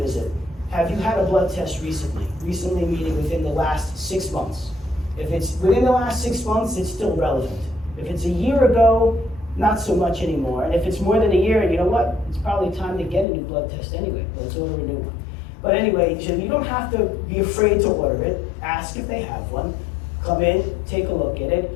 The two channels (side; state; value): right; drops out; at 13.2 s